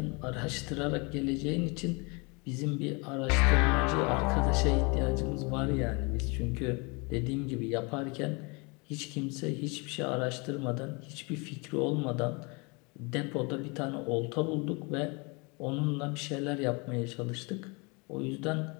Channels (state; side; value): quieter; right; 29.7 dB